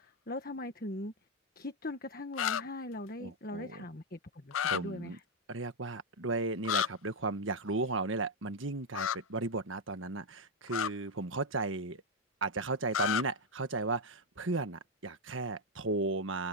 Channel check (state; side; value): normal; both; correlation 0.03